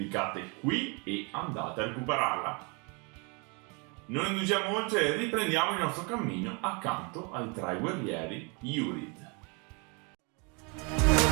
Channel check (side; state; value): left; quieter; 32.3 dB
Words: qui e andate a recuperarla. Non indugiamo oltre e riprendiamo il nostro cammino accanto ai tre guerrieri Yurid.